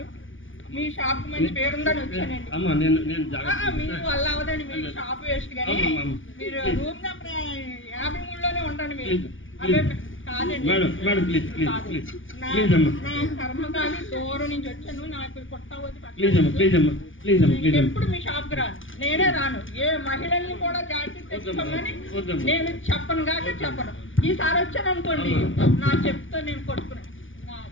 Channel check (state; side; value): late; right; 0.57 ms